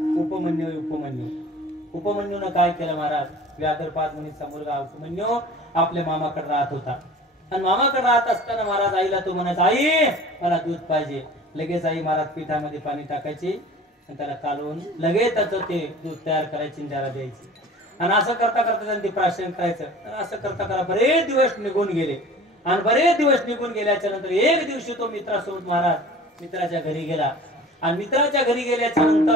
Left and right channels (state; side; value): normal; both; correlation 0.43